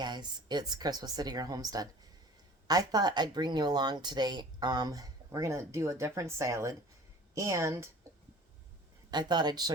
it's Chris with City Girl Homestead. I thought I'd bring you along today. We're gonna do a different salad, and I thought I'd show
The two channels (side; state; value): both; normal; correlation 0.44